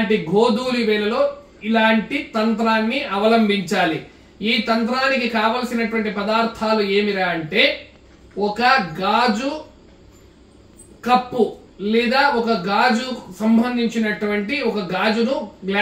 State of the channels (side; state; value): both; identical; correlation 1.00